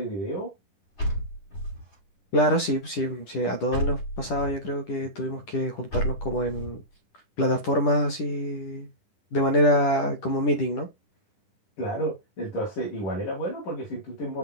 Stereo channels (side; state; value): right; late; 10 ms